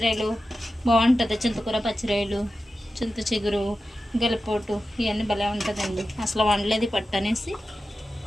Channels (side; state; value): both; normal; correlation 0.92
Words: బాగుంటుంది. చింతకూర పచ్చిరాయలు, చింత చిగురు, గెలపోటు ఇవన్నీ భలే ఉంటుందండి. అసలు వండలేదు పట్టు అనేసి.